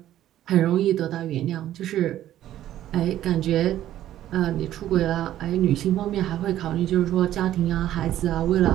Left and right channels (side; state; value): left; quieter; 12.6 dB